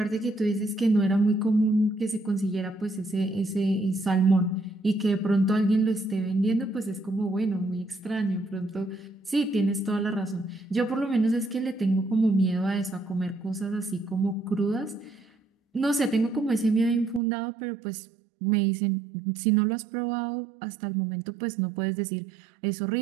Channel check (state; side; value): drops out; left; at 17.2 s